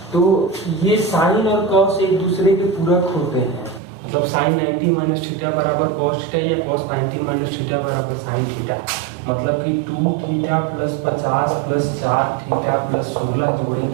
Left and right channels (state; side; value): drops out; left; at 3.8 s